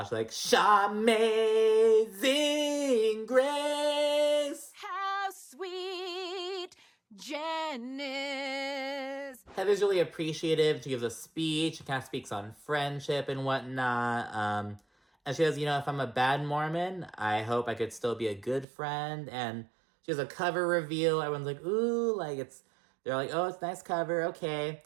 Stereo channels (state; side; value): drops out; left; at 18.7 s